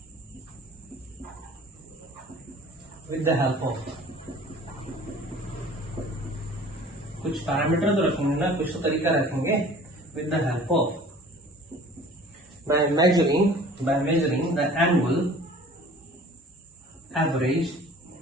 with the help of कुछ पैरामीटर तो रखेंगे ना, कुछ तो तरीका रखेंगे, with the help of by measuring the annual average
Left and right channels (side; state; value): both; normal; correlation 0.47